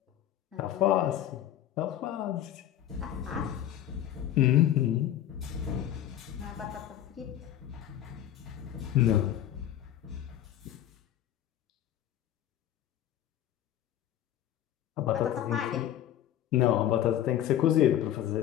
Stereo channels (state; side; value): quieter; right; 11.6 dB